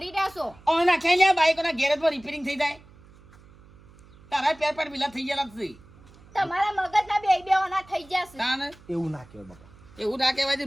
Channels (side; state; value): right; noise; hum, 25 dB below the sound